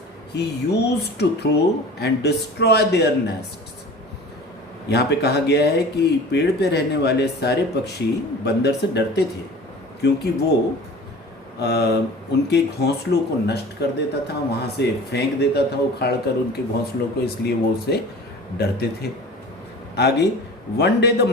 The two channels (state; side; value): normal; both; correlation 0.40